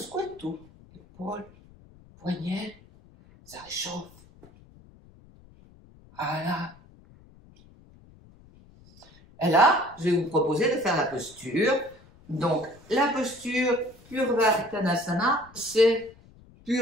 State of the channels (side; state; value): left; noise; rumble, 25 dB below the sound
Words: tout. Épaules, poignet, ça réchauffe. Voilà. Et là, je vais vous proposer de faire la posture. Donc, la posture Purvottanasana, c'est